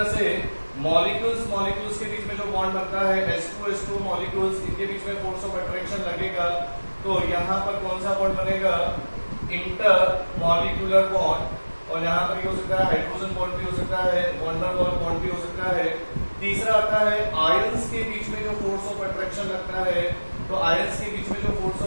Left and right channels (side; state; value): both; inverted; correlation -1.00